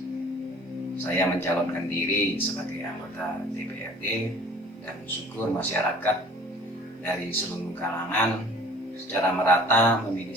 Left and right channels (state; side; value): normal; both; correlation 0.49